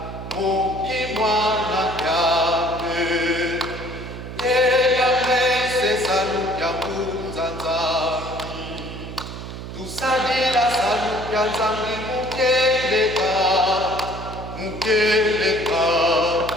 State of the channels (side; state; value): right; noise; hum, 10 dB below the sound